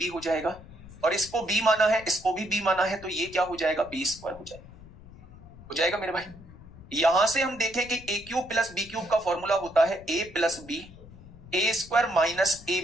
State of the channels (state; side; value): noise; left; rumble, 19 dB below the sound